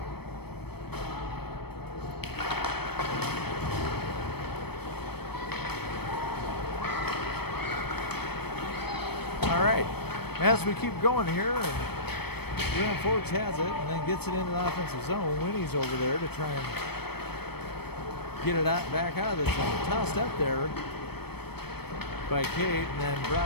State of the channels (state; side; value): late; right; 0.97 ms